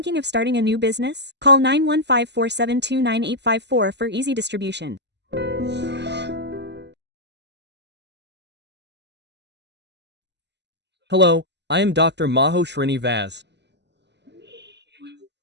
of starting a new business? Call 915-472-9854 for easy distribution. Hello, I am Dr. Maho Srinivas.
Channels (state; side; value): late; left; 0.50 ms